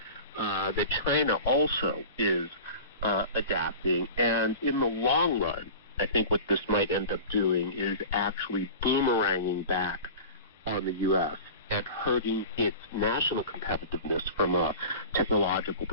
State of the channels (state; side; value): inverted; both; correlation -0.36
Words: that China also is adapting. And in the long run, I think what this might end up doing is actually boomeranging back on the U.S. and hurting its national competitiveness from a technological